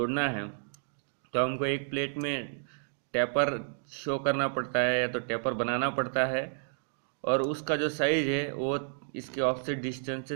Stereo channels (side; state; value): left; silent; digital silence